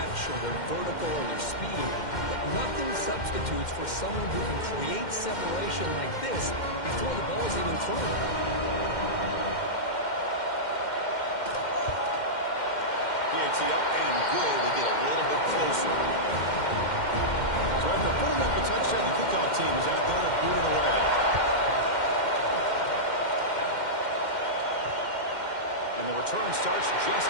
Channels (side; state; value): right; late; 2.1 ms